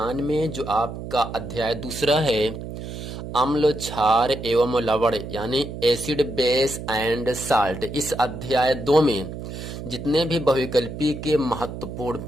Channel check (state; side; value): noise; right; hum, 9 dB below the sound